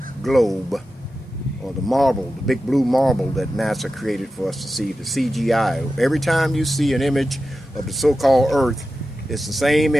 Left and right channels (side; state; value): both; normal; correlation 0.92